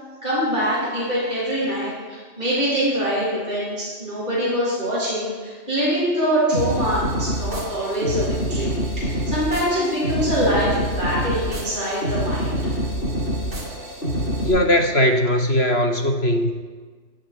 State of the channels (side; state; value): right; late; 3.0 ms